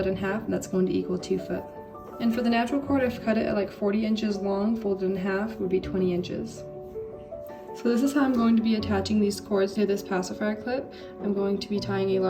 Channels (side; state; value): both; identical; correlation 1.00